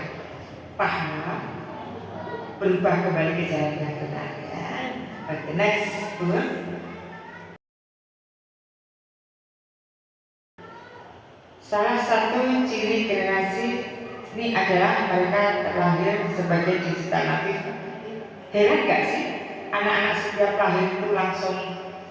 Paham? Berubah kembali ke jalan yang benar ya. Oke, next, Bu. Salah satu ciri generasi ini adalah mereka terlahir sebagai digital natif. Heran gak sih anak-anak setiap lahir itu langsung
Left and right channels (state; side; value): identical; both; correlation 1.00